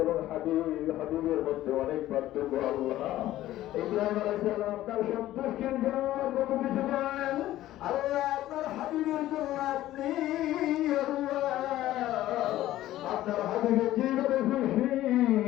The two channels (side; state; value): right; quieter; 14.5 dB